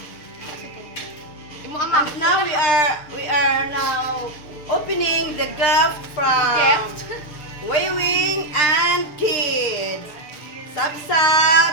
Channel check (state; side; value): late; right; 6.7 ms